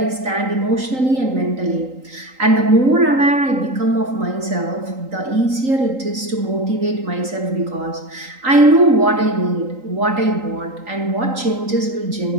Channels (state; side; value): late; left; 3.8 ms